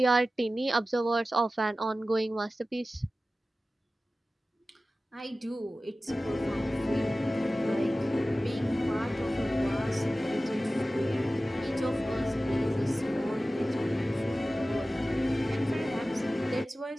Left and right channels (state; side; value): normal; both; correlation 0.96